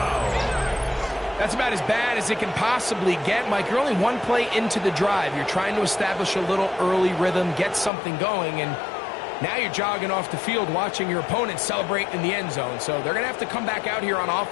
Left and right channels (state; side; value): drops out; right; at 7.9 s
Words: That's about as bad as it can possibly get, Mike. You're only one play into the drive. You're trying to establish a little early rhythm, get something going, and now you're jogging off the field watching your opponent celebrate in the end zone. So they're going to have to come back out here on